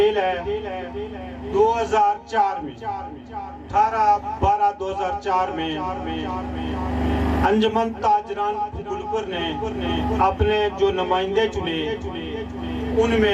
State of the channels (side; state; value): both; identical; correlation 1.00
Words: है, 2004 में 18/12/2004 में अंजुमन ताजरान गुलपुर ने अपने जो नुमाइंदे चुने,